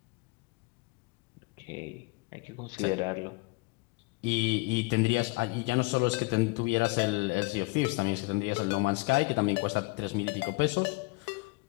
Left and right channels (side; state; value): right; quieter; 25.9 dB